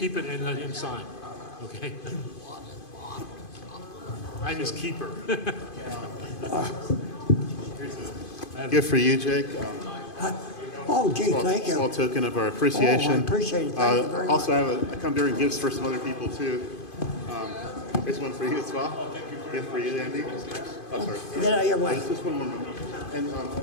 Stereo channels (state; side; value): late; right; 2.5 ms